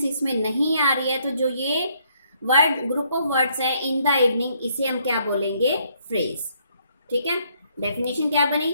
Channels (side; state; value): both; inverted; correlation -0.69